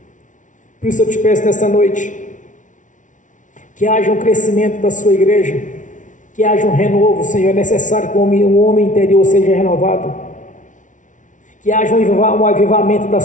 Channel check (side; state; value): right; late; 0.37 ms